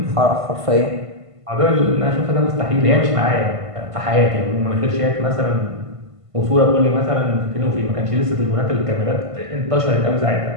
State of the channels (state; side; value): late; left; 1.5 ms